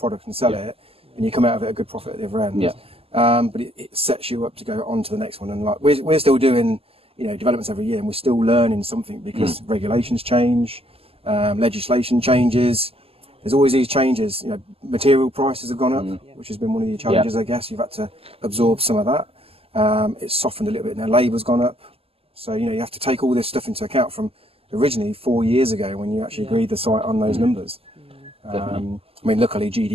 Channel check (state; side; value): late; left; 0.28 ms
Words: and sell it, and you come out of it a good profit at the other end. But it sets you up to go on to the next one. And like we're still doing, developments every year, and we're still learning something because regulations change, legislation changes. There's always these changes. Material prices have gone up, which has been one of your challenges, I guess. You've had to absorb some of that. It's softened a little bit now. Labour's gone up. So, you have to take all this stuff into account from originally 4 years ago when you actually agreed the site on those numbers. I mean, luckily